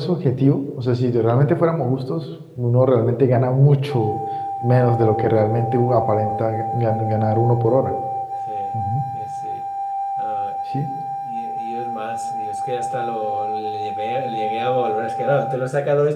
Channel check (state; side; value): identical; both; correlation 1.00